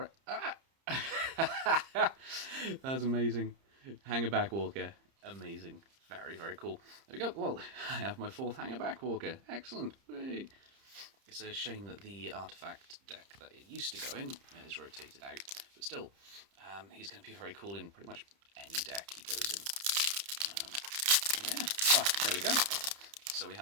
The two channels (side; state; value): left; late; 30 ms